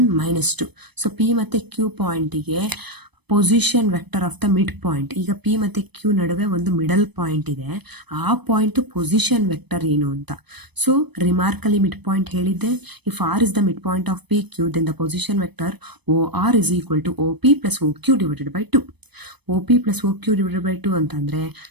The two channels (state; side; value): late; left; 0.99 ms